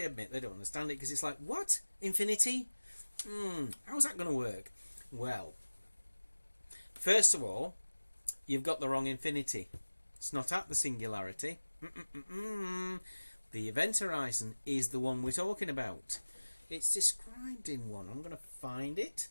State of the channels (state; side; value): inverted; both; correlation -1.00